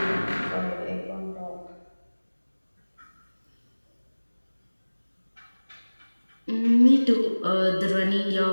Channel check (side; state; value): both; inverted; correlation -1.00